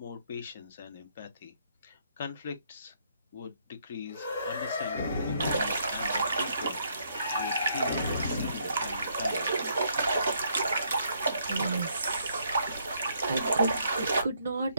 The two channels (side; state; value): both; inverted; correlation -0.71